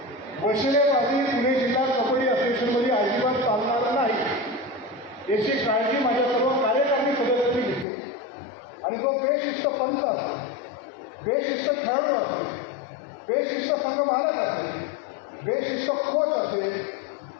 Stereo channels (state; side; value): drops out; right; at 7.9 s